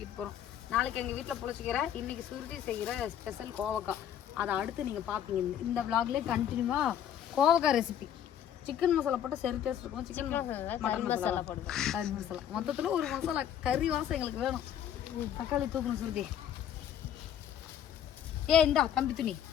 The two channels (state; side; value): quieter; right; 9.9 dB